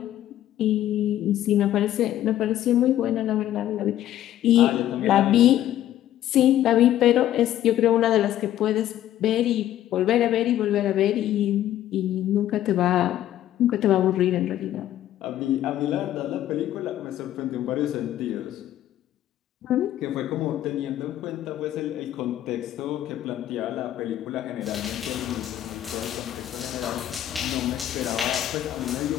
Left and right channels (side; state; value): right; quieter; 12.4 dB